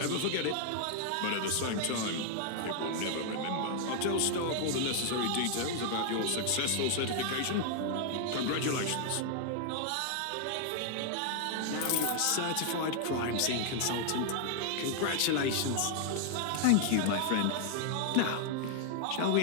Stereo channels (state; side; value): different; both; correlation 0.00